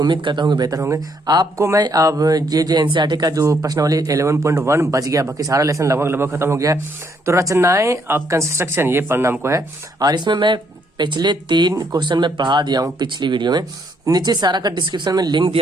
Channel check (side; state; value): both; normal; correlation 0.71